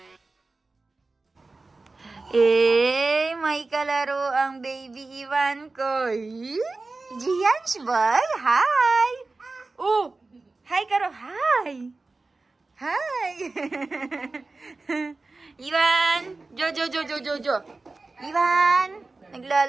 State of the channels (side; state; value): left; quieter; 3.5 dB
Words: May kalaro ang baby Ivan ko. Gianch boy, hi! Oh, hi Karo, hi! Hi! Ivan! Jo. Ivan!